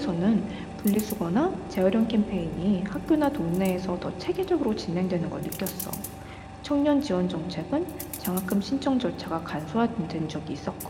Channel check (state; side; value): identical; both; correlation 1.00